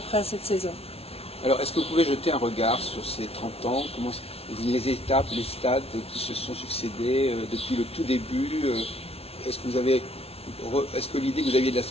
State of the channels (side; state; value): right; late; 0.29 ms